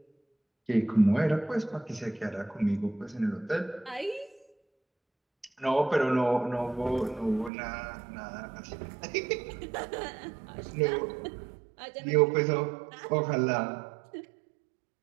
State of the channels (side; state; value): left; drops out; at 7.5 s